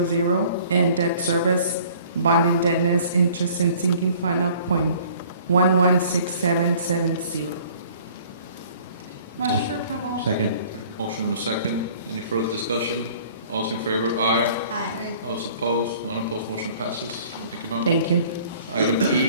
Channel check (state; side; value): inverted; both; correlation -0.52